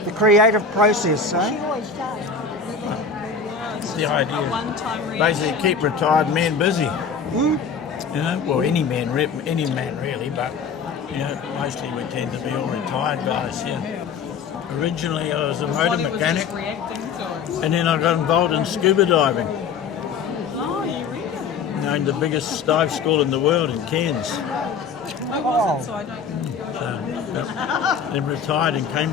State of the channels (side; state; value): right; quieter; 5.6 dB